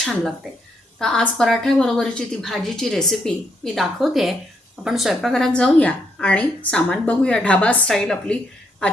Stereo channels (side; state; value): both; normal; correlation 0.74